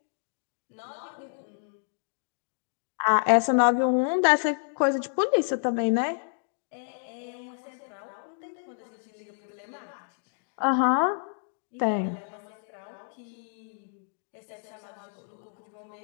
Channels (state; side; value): silent; right; digital silence